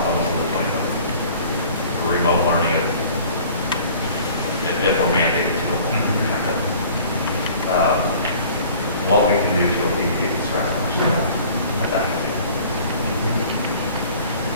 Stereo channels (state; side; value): inverted; both; correlation -0.49